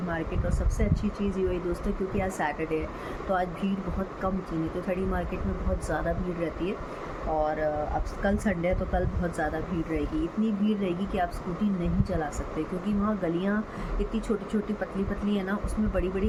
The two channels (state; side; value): identical; both; correlation 1.00